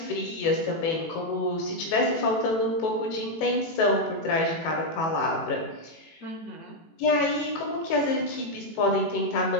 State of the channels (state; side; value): late; right; 18 ms